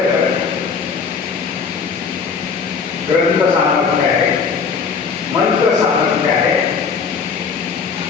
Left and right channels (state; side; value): quieter; right; 5.7 dB